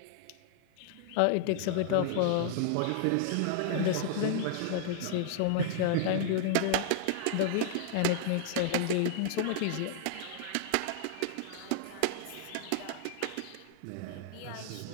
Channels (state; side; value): different; both; correlation -0.01